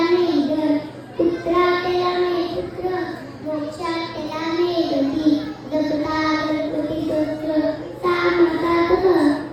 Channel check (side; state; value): both; identical; correlation 1.00